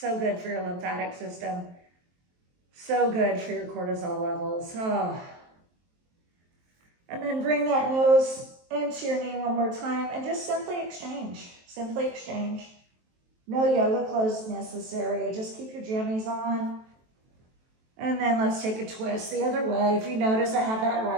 good for your lymphatic system. So good for your cortisol levels. And then bring that nose into your knee one more time and just simply exchange. Simply exchange. No yoga clothes necessary. Just keep your jammies on. And then let's take a twist the other way. If you notice, I have that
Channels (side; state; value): left; late; 23 ms